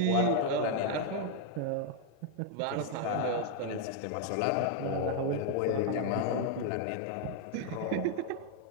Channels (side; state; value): both; different; correlation 0.00